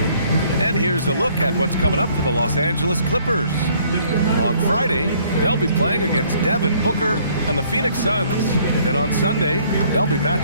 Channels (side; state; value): both; inverted; correlation -0.62